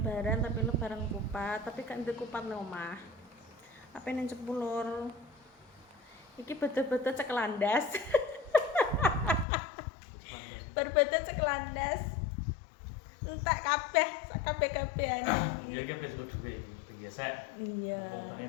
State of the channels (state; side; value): drops out; right; at 9.5 s